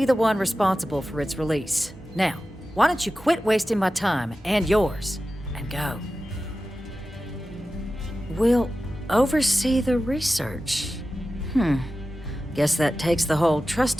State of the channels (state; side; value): normal; both; correlation 0.94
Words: the one responsible for its release. Now, why don't you quit wasting my time and yours, and go? We'll oversee the research. Guess that takes the whole